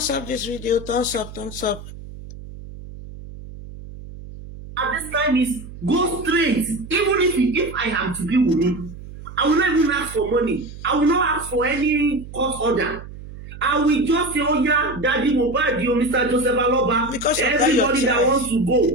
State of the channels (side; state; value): right; noise; hum, 14 dB below the sound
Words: up this video. Thumbs up, thumbs up. At this time is go straight. Even if I am to be Wunmi, I will not even ask for money. I will not ask for any court order. I will just say, oh yeah, Daddy Mohbad, Mr. Joseph Aloba, everybody that wants to